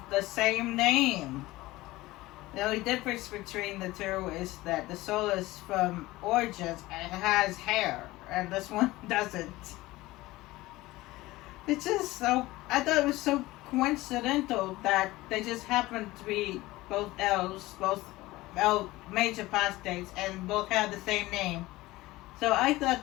the same name. The only difference between the two is that the Solus from Origins has hair, and this one doesn't. It's just so, I thought it was so coincidental that they just happened to be both elves, both mage apostates, and both had the same name. So I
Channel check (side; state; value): right; quieter; 18.7 dB